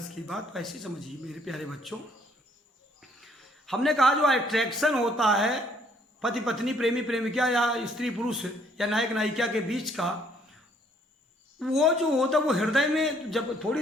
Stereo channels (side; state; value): both; normal; correlation 0.64